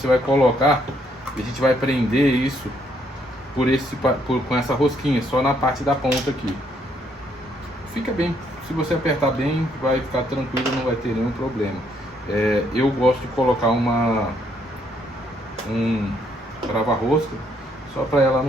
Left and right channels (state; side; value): normal; both; correlation 0.70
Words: vai colocar e a gente vai prender isso com essa rosquinha, só na parte da ponta aqui. Fica bem, se você apertar bem, vai ficar tranquilo, não vai ter nenhum problema. Eu gosto de colocar um trava-rosca, só para ela